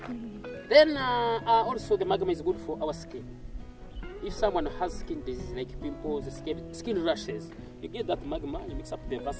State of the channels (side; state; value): both; identical; correlation 1.00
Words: Then also the magma is good for our skin. If someone has skin disease like pimples, skin rashes, you get that magma, you mix up the